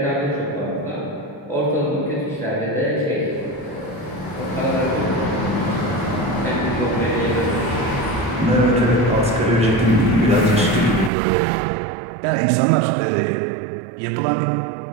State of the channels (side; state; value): left; drops out; at 11.1 s